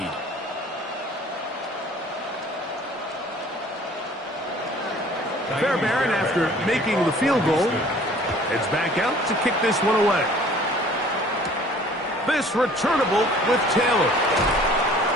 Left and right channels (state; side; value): normal; both; correlation 0.51